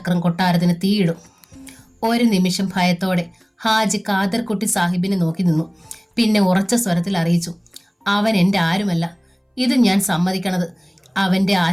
കൊട്ടാരത്തിന് തീയിടും. ഒരു നിമിഷം ഭയത്തോടെ ഹാജി ഖാദർകുട്ടി സാഹിബിനെ നോക്കി നിന്നു. പിന്നെ ഉറച്ച സ്വരത്തിൽ അറിയിച്ചു, അവൻ എൻ്റെ ആരുമല്ല. ഇത് ഞാൻ സമ്മതിക്കണത് അവന്റെ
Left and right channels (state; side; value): identical; both; correlation 1.00